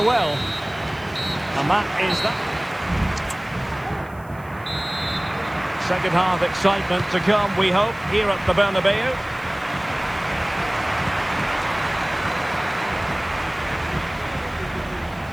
well, and that is that. Second half excitement to come, we hope, here at the Bernabeu.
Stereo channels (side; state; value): right; noise; hiss, 27 dB below the sound